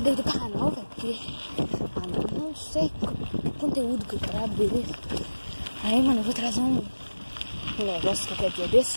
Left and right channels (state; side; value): inverted; both; correlation -1.00